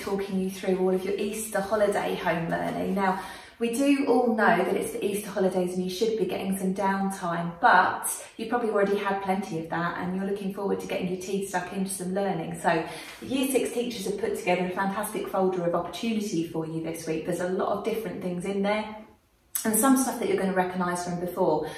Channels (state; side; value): identical; both; correlation 1.00